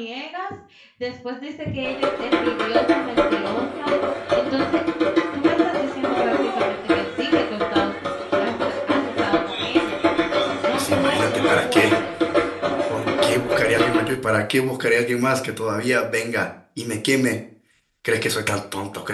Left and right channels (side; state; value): both; identical; correlation 1.00